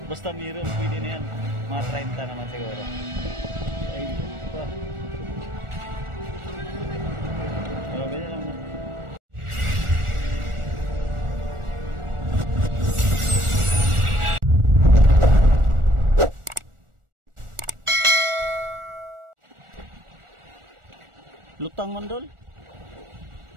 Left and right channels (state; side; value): late; left; 1.4 ms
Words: Basta meron, pwede na yan. Mga 30 naman siguro. Ay, pa. Oh, ganyan lang na. Lutang mandol.